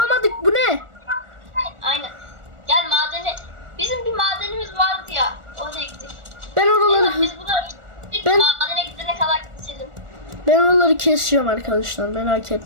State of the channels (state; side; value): late; left; 1.4 ms